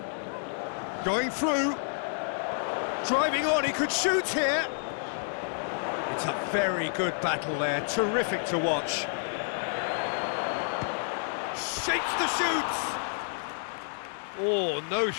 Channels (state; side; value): silent; right; digital silence